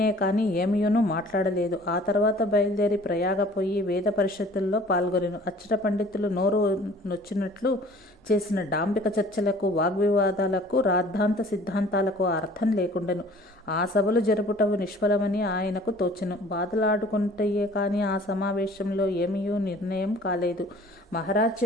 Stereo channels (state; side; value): normal; both; correlation 0.50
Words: కానీ ఏమీయును మాట్లాడలేదు. ఆ తర్వాత బయలుదేరి ప్రయాగపోయి వేద పరిషత్తుల్లో పాల్గొనెను. అచ్చట పండితులు నోరు నొచ్చినట్లు చేసిన డాంబిక చర్చలకు, వాగ్వివాదాలకు, రాద్ధాంత సిద్ధాంతాలకు అర్థం లేకుండెను. ఆ సభలు జరుపుటవు నిష్ఫలమని ఆయనకు తోచెను. బాధలాడుకుంటయే కానీ ఆ సమావేశంలో ఏమీయూ నిర్ణయం కాలేదు. మహారాజ్